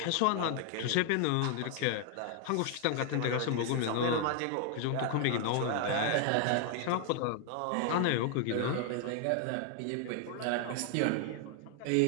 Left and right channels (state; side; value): different; both; correlation 0.00